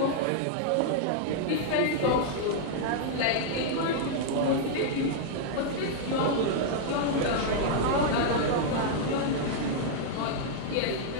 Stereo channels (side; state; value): both; different; correlation -0.01